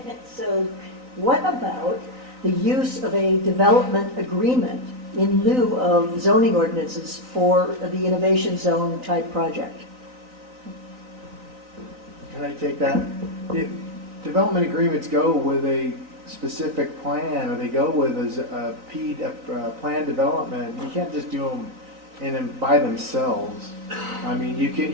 so what about the use of a development agreement in lieu of zoning ordinances for the innovation zone type project? Can I take that? Development agreements go with a specific plan, or they go with a plan development. You can't just do them by themselves. I mean,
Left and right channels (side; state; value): left; late; 3.9 ms